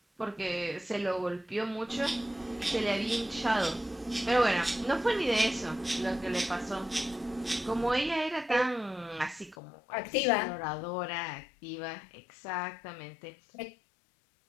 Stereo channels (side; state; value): right; drops out; at 9.6 s